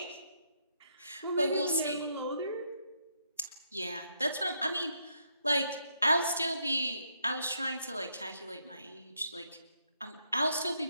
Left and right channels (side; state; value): both; inverted; correlation -0.75